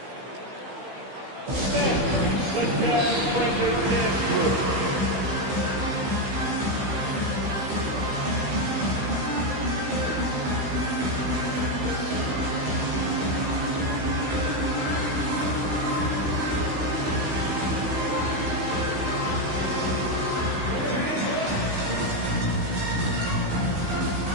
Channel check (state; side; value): late; left; 15 ms